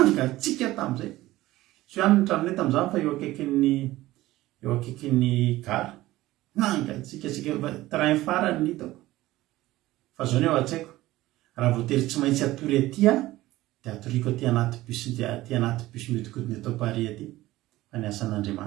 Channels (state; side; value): quieter; left; 17.0 dB